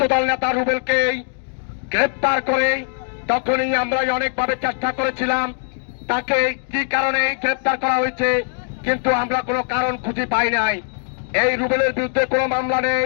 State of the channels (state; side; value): silent; right; digital silence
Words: নেতা রুবেলকে গ্রেপ্তার করে তখনই আমরা অনেকভাবে চেষ্টা করেছিলাম তাকে কি কারণে গ্রেপ্তার করা হয়েছে, কিন্তু আমরা কোনো কারণ খুঁজে পাই নাই। এই রুবেলের বিরুদ্ধে কোনো মামলা নেই,